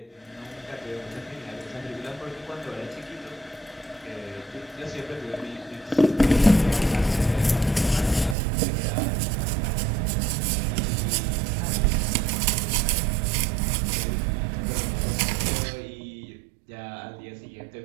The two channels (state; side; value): drops out; left; at 8.3 s